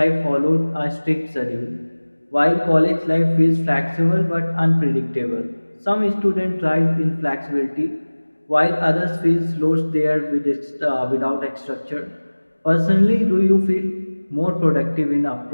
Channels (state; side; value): inverted; both; correlation -1.00